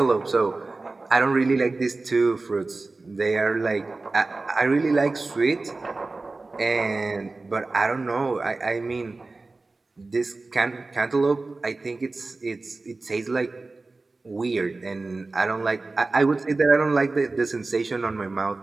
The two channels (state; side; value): quieter; left; 3.5 dB